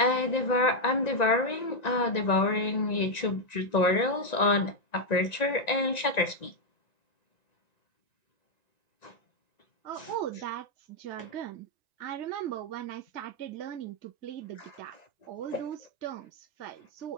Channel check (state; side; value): late; right; 1.9 ms